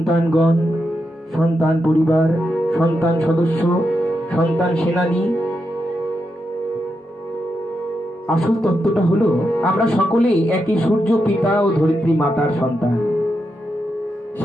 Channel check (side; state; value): both; normal; correlation 0.85